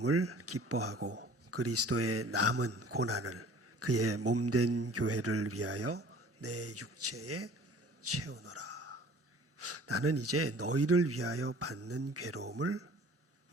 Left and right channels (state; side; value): normal; both; correlation 0.48